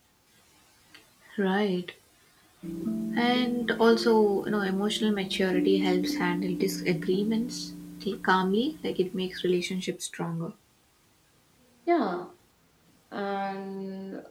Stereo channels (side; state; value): both; identical; correlation 1.00